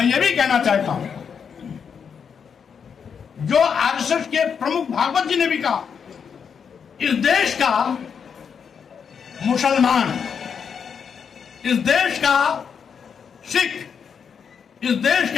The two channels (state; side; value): quieter; right; 6.8 dB